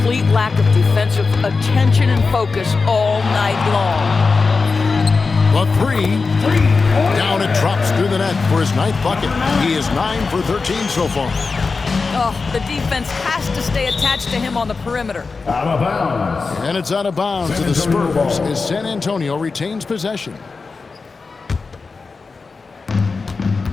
lack of defensive attention and focus all night long. The three. Down it drops through the net for his 9th bucket. He is 9 for 13 so far. Oh, the defense has to stay attached to him on the perimeter. Out of bounds. And it's out of bounds to the Spurs as San Antonio retains possession.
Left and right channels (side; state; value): right; quieter; 4.4 dB